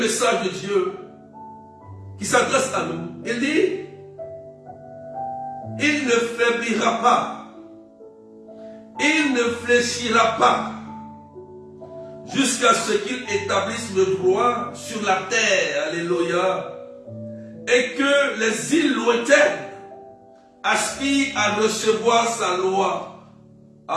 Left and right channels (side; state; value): both; identical; correlation 1.00